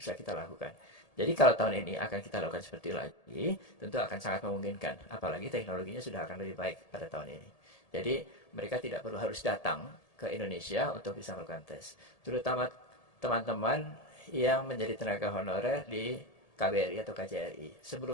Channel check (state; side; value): late; right; 1.8 ms